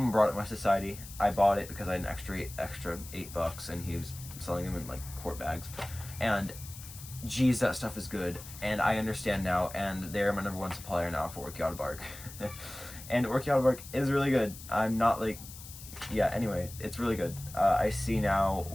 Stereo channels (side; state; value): left; noise; hiss, 15 dB below the sound